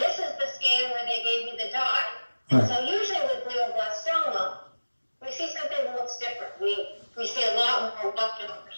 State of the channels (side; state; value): both; inverted; correlation -1.00